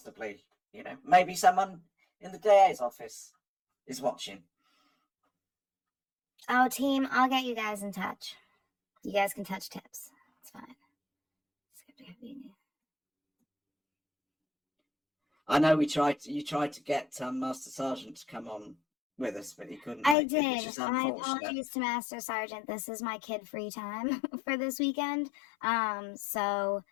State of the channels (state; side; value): drops out; right; at 20.2 s